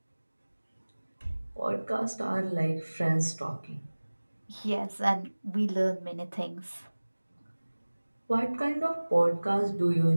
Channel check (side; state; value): both; inverted; correlation -1.00